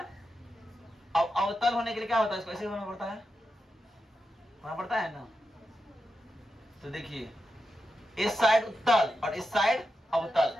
अब अवतल होने के लिए क्या होता है, इसको ऐसे होना पड़ता है ना। तो देखिए इस साइड उत्तल और इस साइड अवतल,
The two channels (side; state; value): both; normal; correlation 0.88